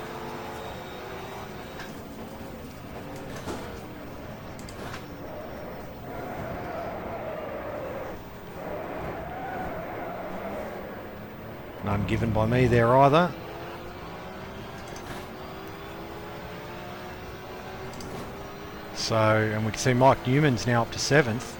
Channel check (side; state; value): both; identical; correlation 1.00